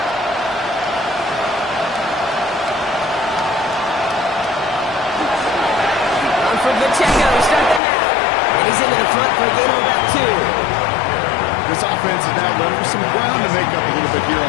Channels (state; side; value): drops out; right; at 7.8 s